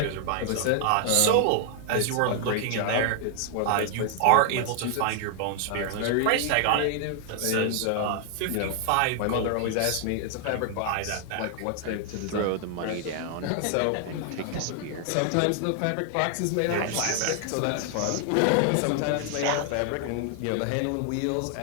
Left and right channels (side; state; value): both; different; correlation 0.00